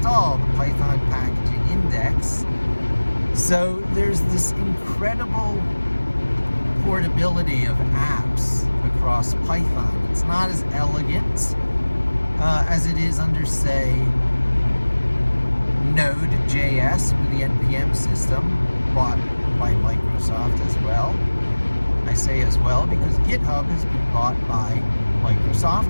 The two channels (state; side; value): inverted; both; correlation -1.00